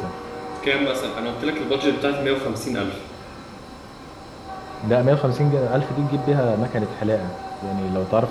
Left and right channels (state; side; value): identical; both; correlation 1.00